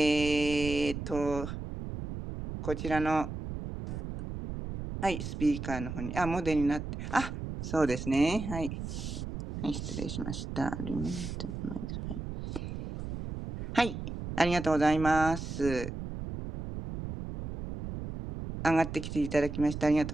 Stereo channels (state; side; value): noise; right; rumble, 7 dB below the sound